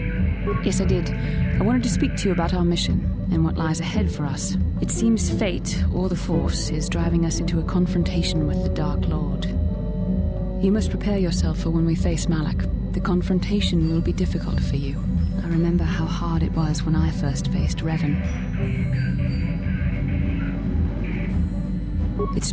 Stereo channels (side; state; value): both; identical; correlation 1.00